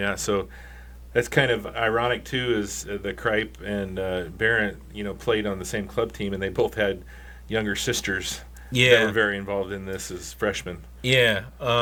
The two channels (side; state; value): both; identical; correlation 1.00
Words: So. That's kind of ironic too, is the Kripe and Barrett, played on the same club team, and they both had younger sisters that were very involved in this as freshmen. Yeah,